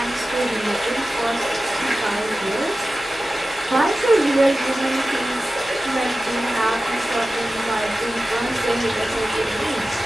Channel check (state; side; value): normal; both; correlation 0.94